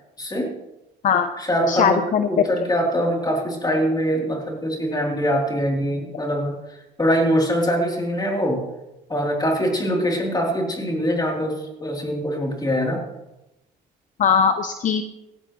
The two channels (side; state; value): both; normal; correlation 0.46